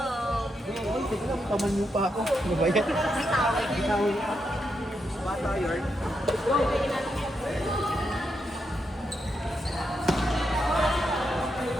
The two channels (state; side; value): normal; both; correlation 0.83